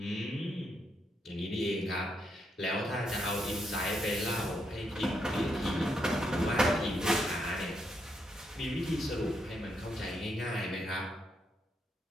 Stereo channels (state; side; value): normal; both; correlation 0.79